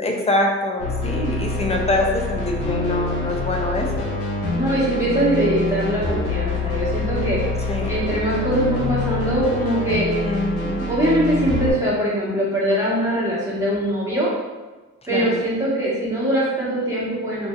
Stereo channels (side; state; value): both; normal; correlation 0.36